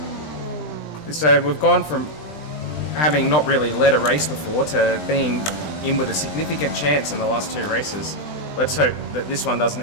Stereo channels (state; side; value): late; right; 20 ms